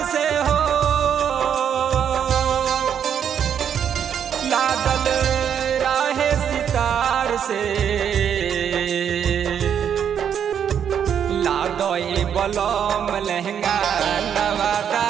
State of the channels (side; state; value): left; quieter; 8.4 dB